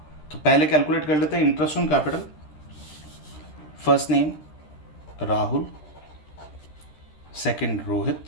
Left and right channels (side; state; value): right; late; 13 ms